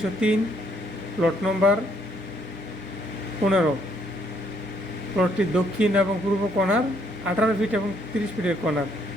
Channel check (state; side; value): normal; both; correlation 0.69